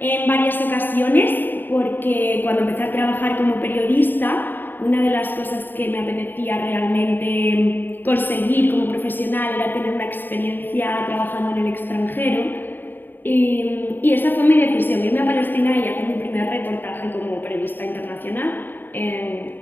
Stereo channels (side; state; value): right; late; 0.093 ms